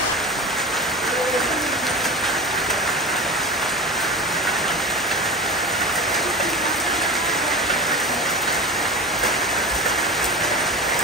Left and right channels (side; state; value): both; normal; correlation 0.28